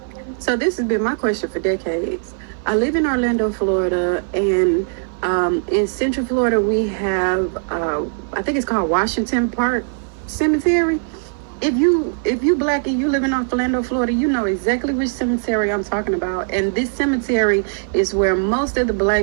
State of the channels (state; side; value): silent; left; 58 dB below the other